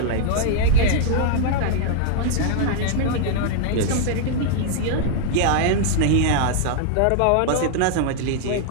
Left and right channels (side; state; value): both; different; correlation -0.01